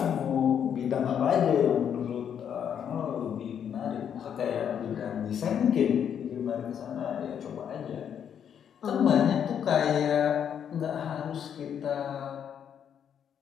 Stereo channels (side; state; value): right; quieter; 8.5 dB